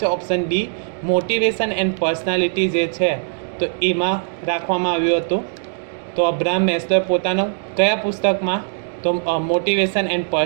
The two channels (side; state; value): left; silent; digital silence